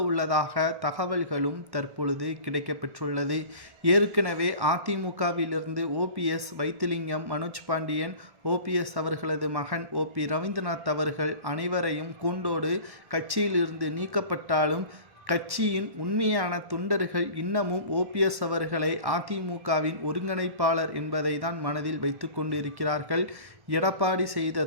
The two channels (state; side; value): late; left; 1.1 ms